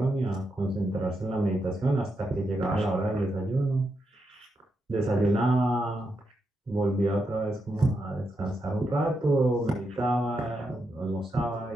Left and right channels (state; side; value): normal; both; correlation 0.84